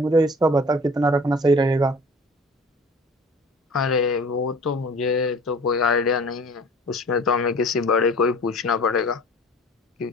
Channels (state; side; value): normal; both; correlation 0.45